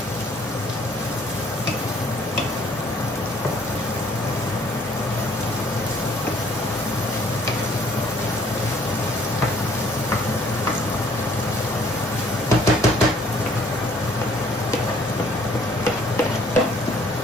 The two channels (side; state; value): both; normal; correlation 0.60